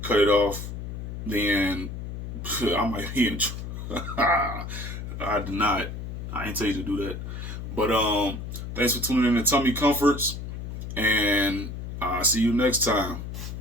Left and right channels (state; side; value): noise; left; hum, 7 dB below the sound